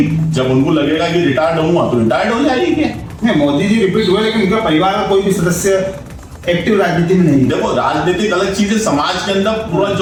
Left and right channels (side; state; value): both; identical; correlation 1.00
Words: जब उनको लगेगा कि रिटायर्ड हुआ तो रिटायर्ड हो जाएगी। नहीं, मोदी जी रिपीट हुए लेकिन उनका परिवार का कोई भी सदस्य एक्टिव राजनीति में नहीं। देखो राजनीतिक अलग चीज है, समाज के अंदर पूरा